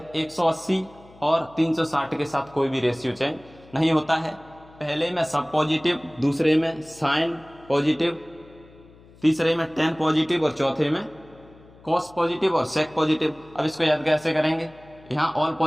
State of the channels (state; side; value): noise; left; hum, 24 dB below the sound